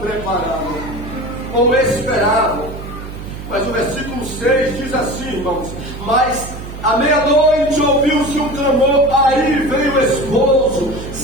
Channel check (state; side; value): noise; right; hum, 11 dB below the sound